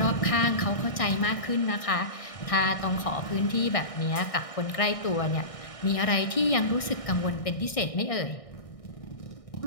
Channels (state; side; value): late; right; 1.6 ms